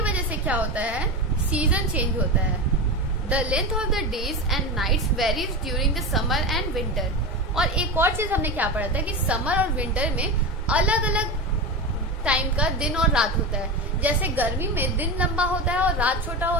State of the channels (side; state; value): both; normal; correlation 0.21